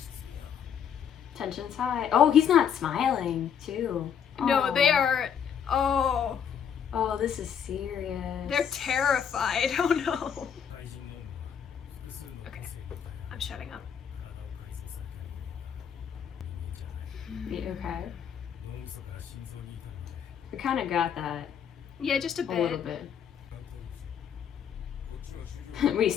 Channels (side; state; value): right; quieter; 8.0 dB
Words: Tension's high. Oh, he's not smiling too. No, they are. Oh. Oh, this is serious. They're terrified. Oh no. Okay, I'm shutting up. Okay. We kind of got that. Yeah, just a bit. A little bit. We